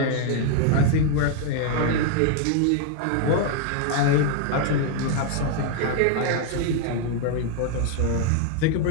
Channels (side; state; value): both; different; correlation 0.00